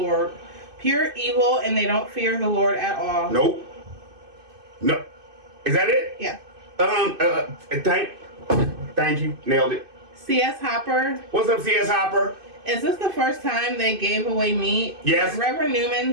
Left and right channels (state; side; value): late; left; 2.6 ms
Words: Pure evil, and they don't fear the Lord at all. Nope. No. Is that it? Yeah. Thank you. Nailed it. C.S. Hopper. What's up, C.S. Hopper? Is this the first time they gave away meat? Yes. Did Reverend